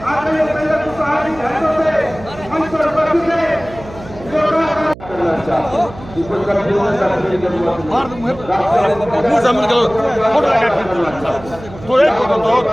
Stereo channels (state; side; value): noise; right; hum, 17 dB below the sound